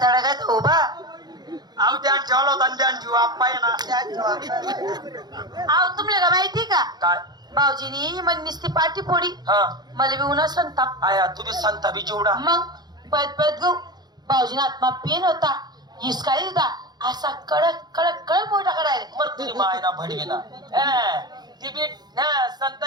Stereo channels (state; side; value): late; left; 0.20 ms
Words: तळा घेता उभा अहो ध्यान ठेवला होता ध्यान ठेवू आप्पा आहे ना. अहो तुम्हाला का माहिती का काय भाऊजीनी मग नुसती पाठी फोडी मला बी उन्हा संताप आया तुम्ही संता बी चिवडा मग पद गो भाऊजीना आत्मा पेन होता हिसकाळी होता असा कडक मोठा करायला मर तुझी मायना भडवीना ती बी संत